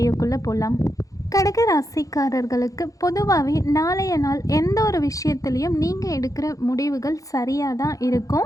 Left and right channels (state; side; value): late; right; 0.17 ms